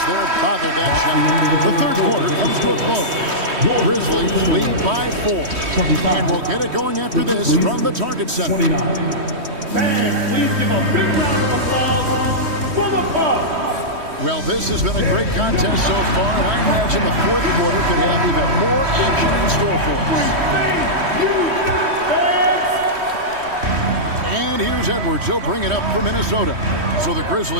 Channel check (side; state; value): left; late; 3.1 ms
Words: there bothered that shot. The third quarter comes to a close. Grizzlies lead by 4. And we'll get it going after this from the Target Center. 29. Fans, please give a big round of applause for the Bucks. Well, this has been a great contest so far, and I imagine the fourth quarter could have even more action in store for us. And here's Edwards. He'll bring it up for Minnesota. So the